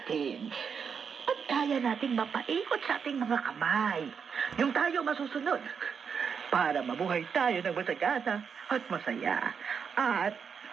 At kaya nating mapaikot sa ating mga kamay. yung tayo masusunod. Para mabuhay tayo ng masagana at masaya. At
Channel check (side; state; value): left; quieter; 6.5 dB